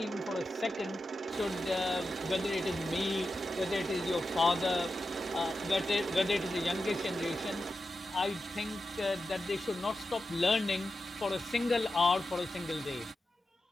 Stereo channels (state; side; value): normal; both; correlation 0.91